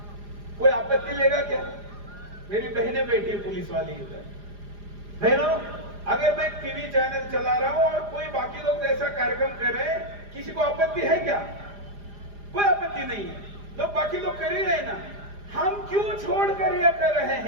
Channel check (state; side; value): late; left; 4.9 ms